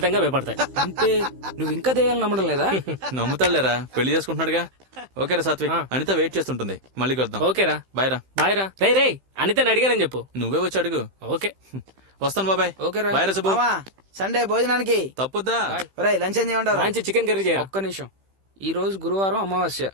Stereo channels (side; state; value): left; late; 15 ms